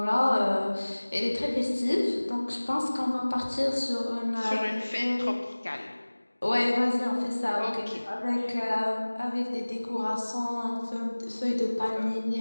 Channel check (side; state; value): both; inverted; correlation -1.00